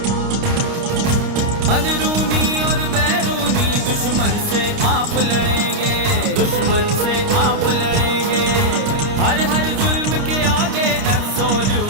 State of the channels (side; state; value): left; late; 29 ms